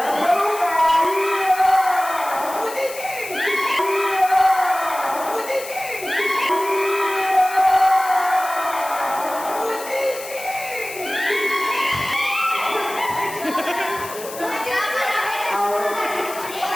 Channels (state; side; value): noise; left; hiss, 13 dB below the sound